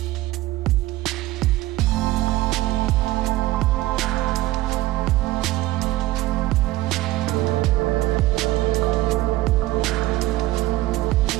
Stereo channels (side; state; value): left; quieter; 17.3 dB